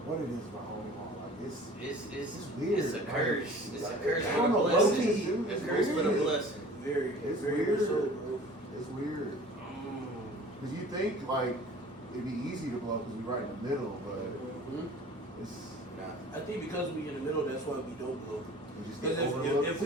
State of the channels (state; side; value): normal; both; correlation 0.45